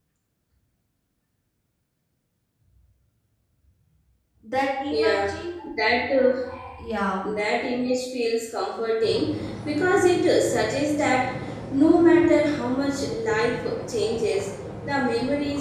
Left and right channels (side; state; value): both; identical; correlation 1.00